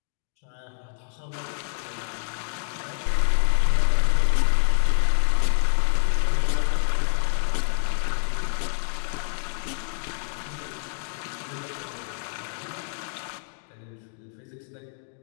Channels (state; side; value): silent; right; digital silence